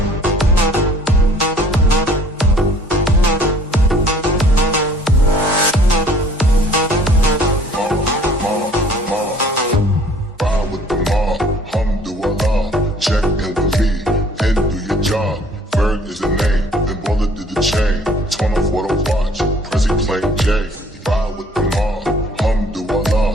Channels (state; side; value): normal; both; correlation 0.55